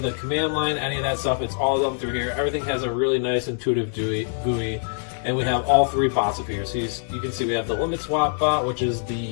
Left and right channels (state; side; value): silent; right; digital silence